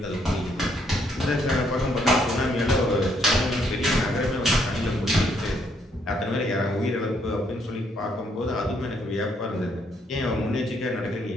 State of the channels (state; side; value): normal; both; correlation 0.71